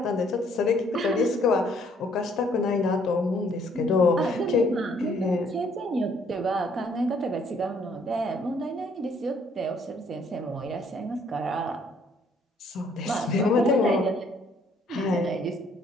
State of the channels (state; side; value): normal; both; correlation 0.64